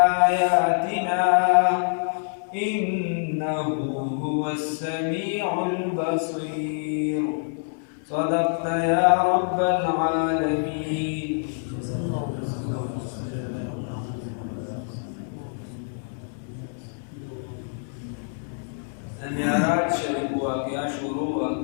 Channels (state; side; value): silent; right; 61 dB below the other